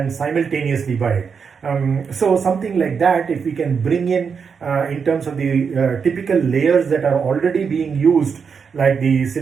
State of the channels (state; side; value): quieter; left; 6.1 dB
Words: simultaneously by it. So something like that, if we can bring in terms of the typical layers that are already being used, like the